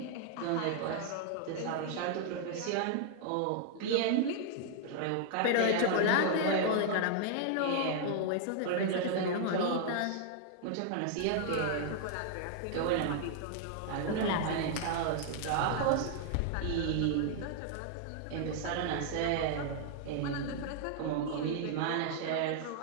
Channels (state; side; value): different; both; correlation 0.00